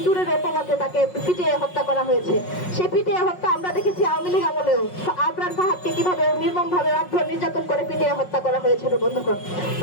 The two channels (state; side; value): late; right; 5.5 ms